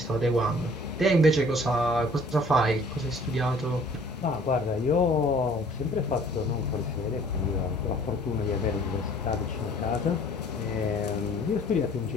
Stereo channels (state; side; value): normal; both; correlation 0.53